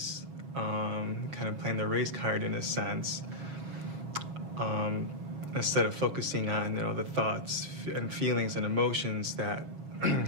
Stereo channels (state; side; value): late; left; 6.7 ms